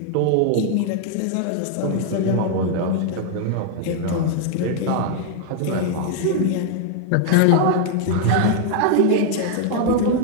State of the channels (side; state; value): both; different; correlation 0.00